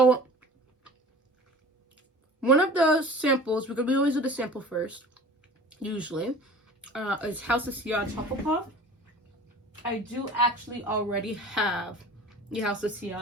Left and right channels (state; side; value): normal; both; correlation 0.42